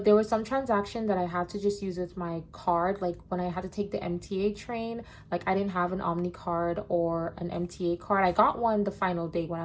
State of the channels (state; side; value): identical; both; correlation 1.00